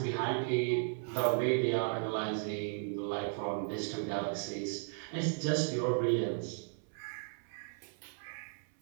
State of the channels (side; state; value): left; silent; 54 dB below the other